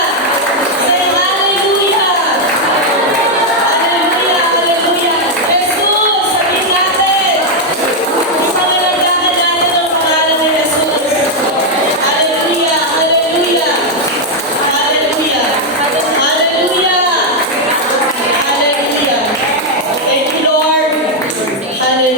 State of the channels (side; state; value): both; normal; correlation 0.01